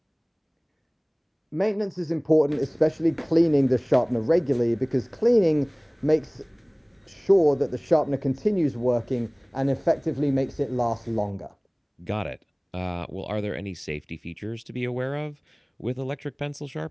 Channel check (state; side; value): identical; both; correlation 1.00